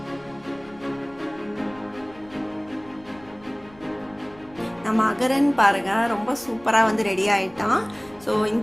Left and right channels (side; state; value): left; noise; rumble, 25 dB below the sound